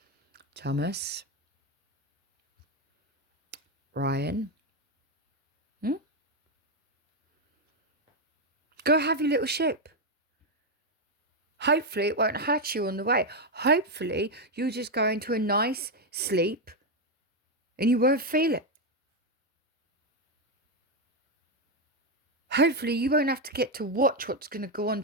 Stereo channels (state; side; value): normal; both; correlation 0.05